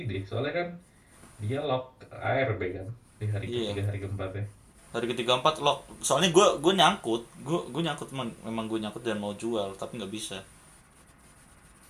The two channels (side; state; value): both; identical; correlation 1.00